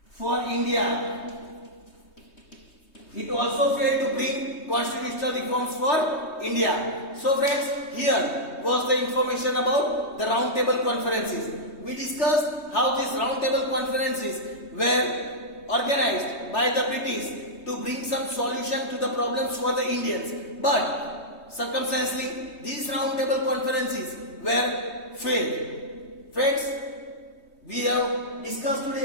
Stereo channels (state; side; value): late; right; 3.2 ms